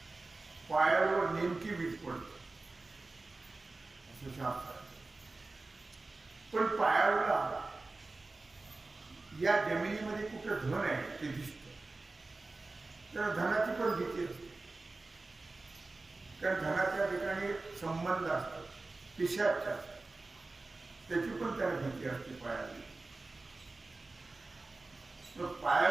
पायावर नेमकी वीज पडते असं शास्त्र. पण पायाला या जमिनीमध्ये कुठं धन आहे ते दिसतं, तर धनाची पण भीती असते. कारण धनाच्या ठिकाणी संबंध असतात, पिशाच असतात, त्याची पण त्याला भीती असते पायाला.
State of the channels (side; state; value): left; quieter; 3.4 dB